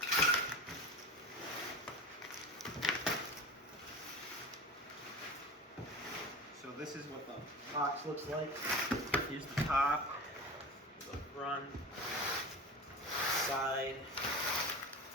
So this is what the box looks like. Here's the top, the front, side,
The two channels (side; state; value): both; normal; correlation 0.31